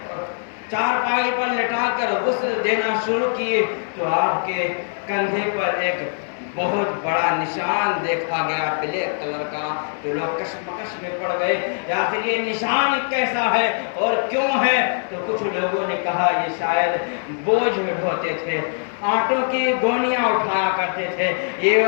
چارپائی پر لٹا کر غسل دینا شروع کیے تو آپ کے کندھے پر ایک بہت بڑا نشان دیکھا گیا بلیک کلر کا، تو لوگ کشمکش میں پڑ گئے آخر یہ نشان کیسا ہے اور کیوں ہے؟ تو کچھ لوگوں نے کہا یہ شاید بوجھ ڈھوتے تھے، آٹوں کی گونیاں اٹھایا کرتے تھے، یہ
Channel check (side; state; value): right; silent; 64 dB below the other